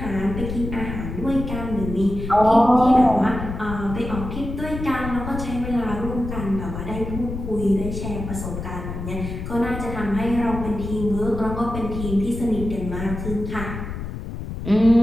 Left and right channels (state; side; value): noise; left; rumble, 7 dB below the sound